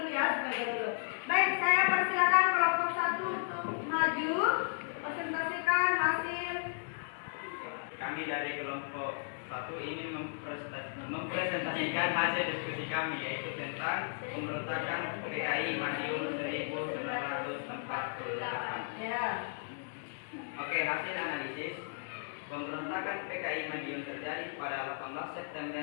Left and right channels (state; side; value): silent; right; digital silence